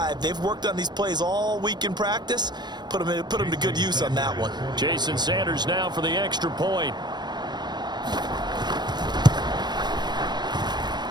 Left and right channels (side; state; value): left; late; 0.21 ms